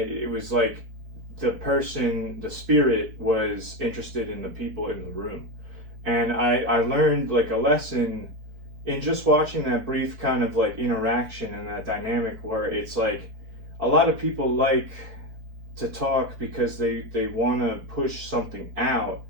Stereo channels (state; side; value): late; left; 4.5 ms